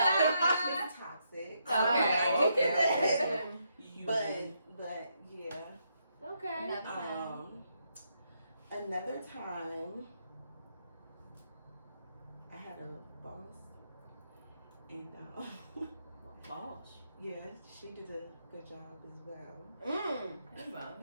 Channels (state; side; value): inverted; both; correlation -0.78